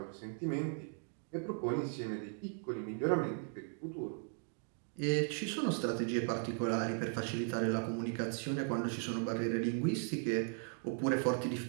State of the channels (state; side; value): silent; left; 53 dB below the other